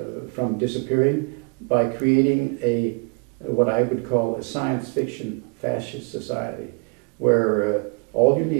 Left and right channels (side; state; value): left; quieter; 35.1 dB